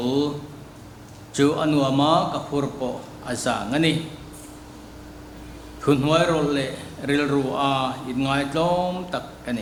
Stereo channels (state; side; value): identical; both; correlation 1.00